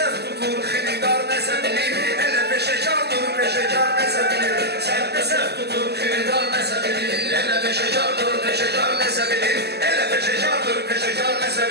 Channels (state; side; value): late; left; 0.48 ms